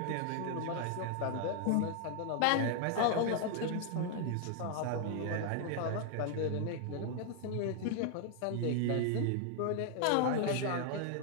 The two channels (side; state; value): both; different; correlation 0.00